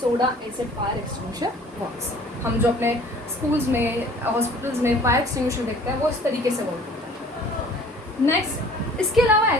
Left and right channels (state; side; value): normal; both; correlation 0.51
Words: acid fire extinguisher works. हम जो अपने स्कूल्स में, हॉस्पिटल्स में फायर एक्सटिंग्विशर देखते हैं वो इस तरीके से वर्क करता है। नेक्स्ट, इसके अलावा